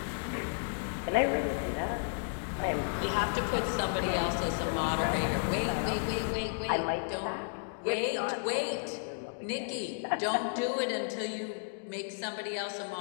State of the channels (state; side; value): silent; right; digital silence